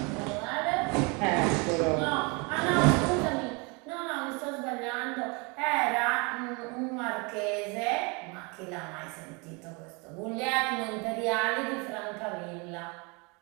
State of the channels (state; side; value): quieter; left; 29.9 dB